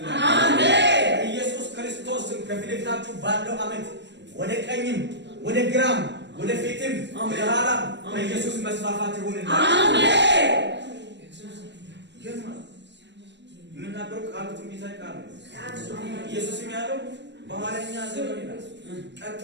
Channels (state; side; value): late; left; 0.51 ms